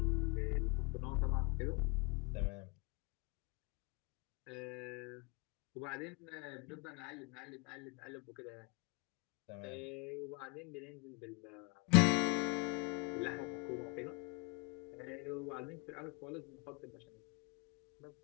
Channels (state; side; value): quieter; right; 30.6 dB